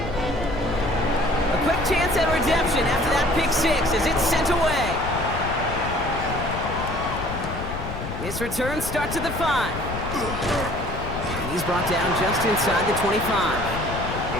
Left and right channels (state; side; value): noise; left; rumble, 7 dB below the sound